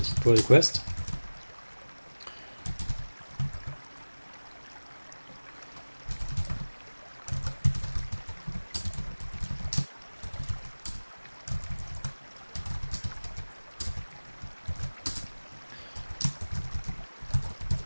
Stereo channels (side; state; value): both; inverted; correlation -1.00